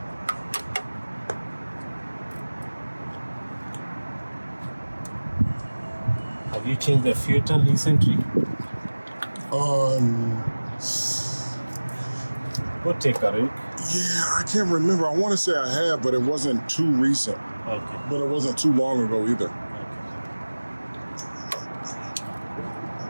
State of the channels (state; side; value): inverted; both; correlation -1.00